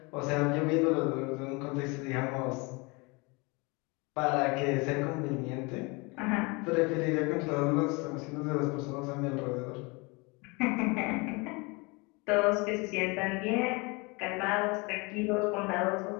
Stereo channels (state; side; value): quieter; right; 27.7 dB